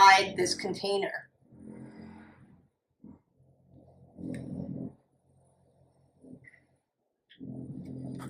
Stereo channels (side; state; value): both; identical; correlation 1.00